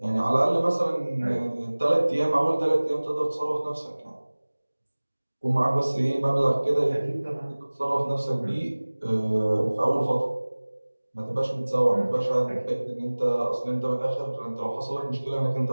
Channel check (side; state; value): both; inverted; correlation -1.00